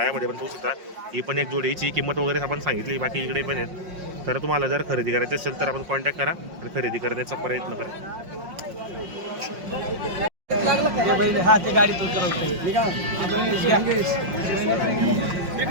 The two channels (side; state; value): left; late; 5.5 ms